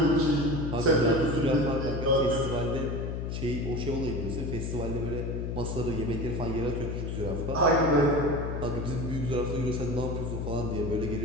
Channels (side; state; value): left; noise; hum, 3 dB below the sound